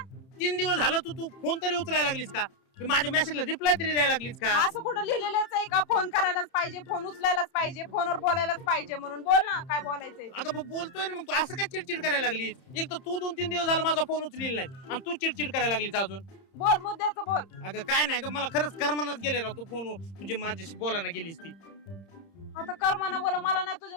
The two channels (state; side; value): late; right; 30 ms